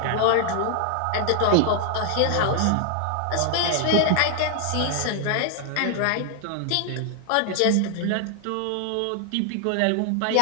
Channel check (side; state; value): both; different; correlation 0.00